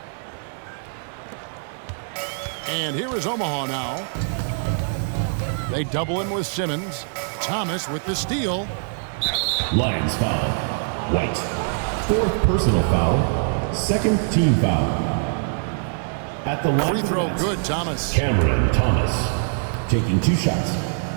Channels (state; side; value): silent; left; 58 dB below the other